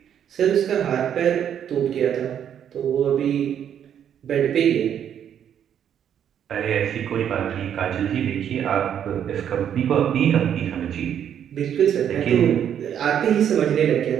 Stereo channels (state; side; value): quieter; left; 9.2 dB